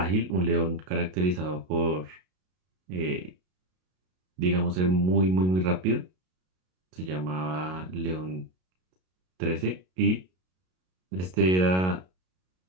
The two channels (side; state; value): left; late; 33 ms